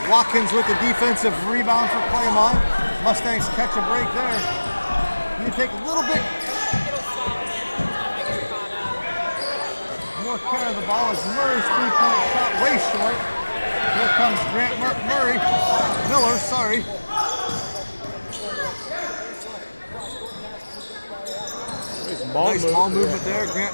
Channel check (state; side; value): inverted; both; correlation -1.00